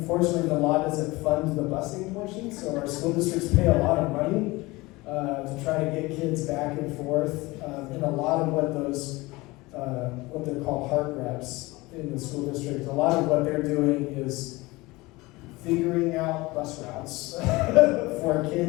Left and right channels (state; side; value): quieter; right; 21.8 dB